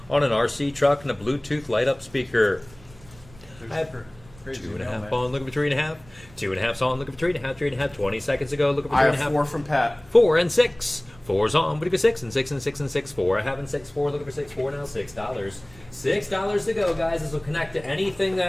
on an RC truck and a Bluetooth light up speaker. I have 2.5 on, looking for 3.5. 2.5's on, looking for 3.5, 3.5. 20 seconds ago, looking for 3.5. I have 4 from Pat. 4 and 6. 4's on, what do you go 6 and 6 and 6 and 6, 4. I have in 6, 4, looking for 6, 4 now, $6. $6 to go, guys. This will connect to anything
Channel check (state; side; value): noise; right; rumble, 24 dB below the sound